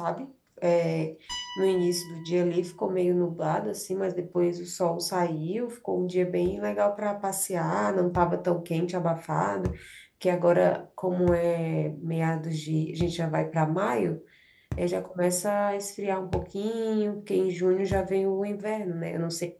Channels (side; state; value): both; identical; correlation 1.00